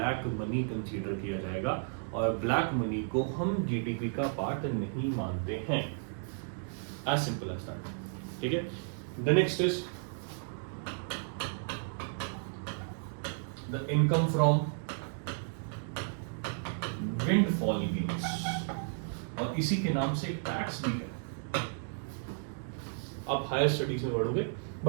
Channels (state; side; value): silent; left; digital silence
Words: मनी कंसीडर किया जाएगा, और ब्लैक मनी को हम जीडीपी का पार्ट नहीं मानते हैं। As simple as that. ठीक है, the next is the income from windfall gains, और इसी के नाम से टैक्स भी है। आप हायर स्टडीज में पढ़ोगे,